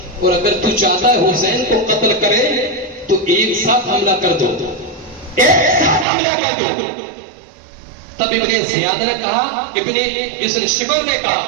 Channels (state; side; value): drops out; left; at 6.1 s